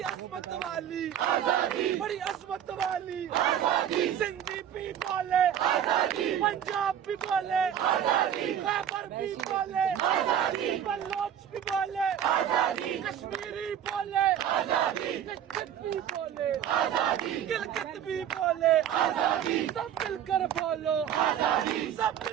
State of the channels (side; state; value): left; quieter; 9.8 dB